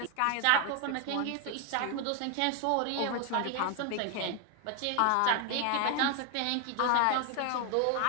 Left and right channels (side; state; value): both; different; correlation 0.01